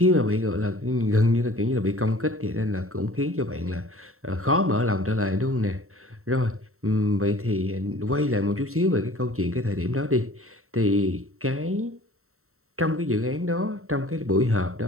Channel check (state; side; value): late; left; 0.63 ms